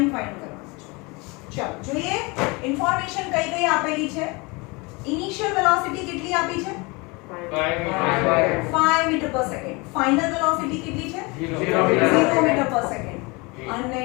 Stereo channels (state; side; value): quieter; right; 26.7 dB